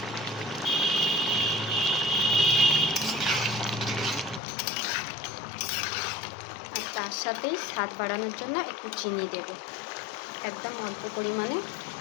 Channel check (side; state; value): right; drops out; at 4.4 s